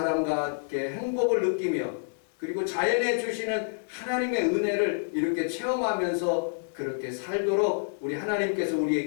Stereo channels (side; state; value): right; silent; digital silence